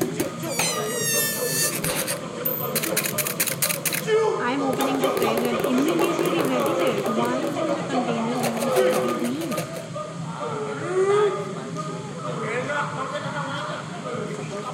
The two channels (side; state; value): both; identical; correlation 1.00